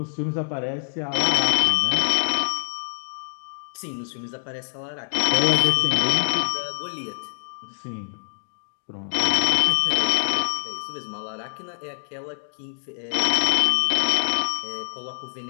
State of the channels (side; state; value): right; silent; digital silence